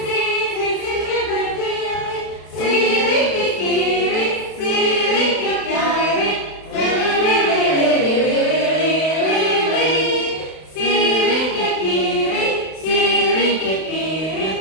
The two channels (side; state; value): right; late; 31 ms